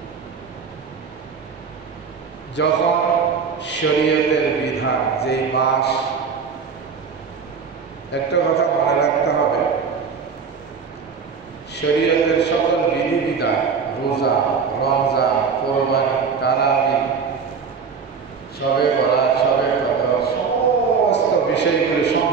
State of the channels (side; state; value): left; quieter; 5.8 dB